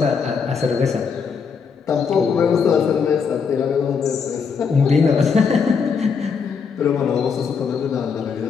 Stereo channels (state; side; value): quieter; right; 5.9 dB